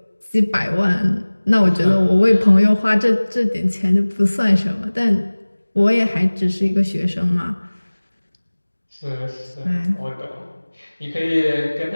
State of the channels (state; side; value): inverted; both; correlation -1.00